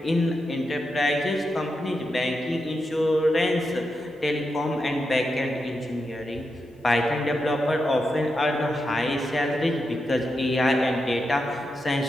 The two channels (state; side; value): normal; both; correlation 0.87